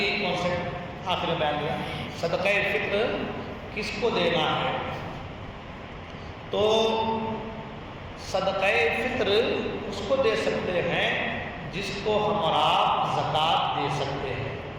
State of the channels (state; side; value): identical; both; correlation 1.00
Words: ایک کانسیپٹ آخر میں بیان کیا، صدقہ فطر کس کو دینا ہے؟ تو صدقہ فطر اس کو دے سکتے ہیں جس کو ہم اور آپ زکوٰۃ دے سکتے ہیں،